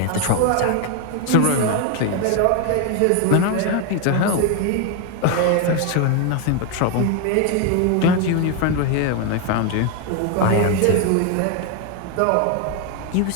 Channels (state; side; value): different; both; correlation 0.01